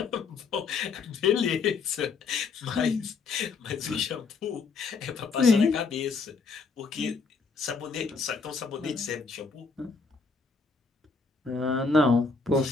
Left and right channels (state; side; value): quieter; right; 4.6 dB